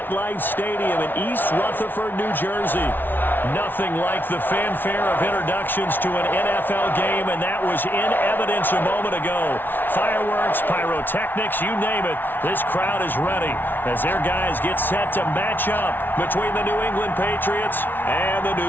Stadium in East Rutherford, New Jersey. Nothing like the fanfare of introductions to an NFL game, and that was in evidence a moment ago. Fireworks, pyrotechnics, you name it. This crowd is ready as their guys get set to match up between the New England Patriots and the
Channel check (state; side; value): late; right; 0.095 ms